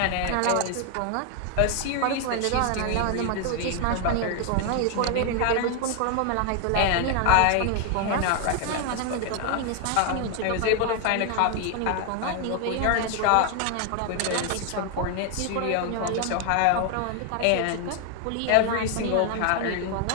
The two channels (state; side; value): different; both; correlation 0.00